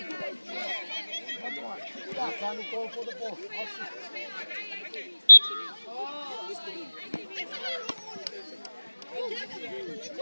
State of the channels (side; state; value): both; inverted; correlation -1.00